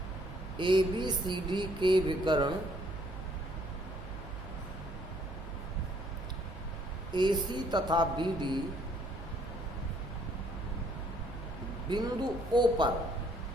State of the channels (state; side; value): noise; right; hum, 11 dB below the sound